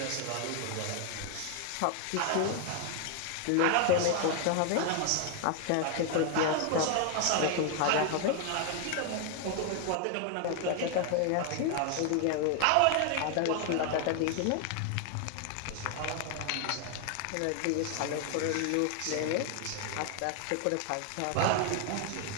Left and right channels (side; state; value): both; different; correlation 0.00